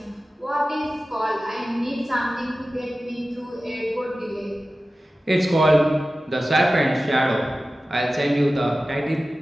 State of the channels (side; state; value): both; normal; correlation 0.95